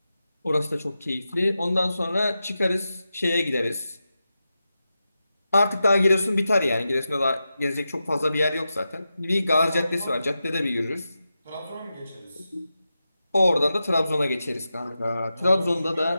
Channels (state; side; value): inverted; both; correlation -0.91